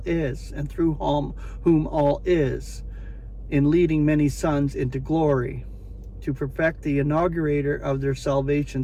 is, and through whom all is, in leading many sons into glory, to perfect the inaugurator of their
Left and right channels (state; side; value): identical; both; correlation 1.00